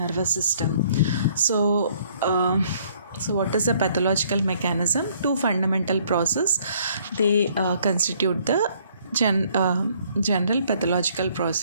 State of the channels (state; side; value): inverted; both; correlation -0.63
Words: system. So what is the pathological mechanism? Two fundamental processes, they constitute the general pathological